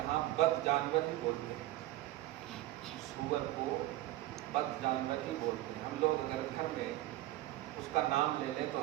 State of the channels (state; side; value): quieter; left; 15.8 dB